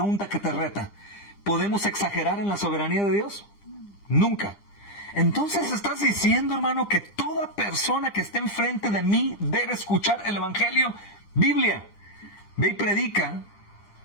que te reta. ¿Podemos exagerar en la soberanía de Dios? Nunca. Entonces estás diciendo, hermano, que toda persona que esté enfrente de mí debe escuchar el Evangelio. Biblia. Ve y predica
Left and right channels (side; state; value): right; late; 9.9 ms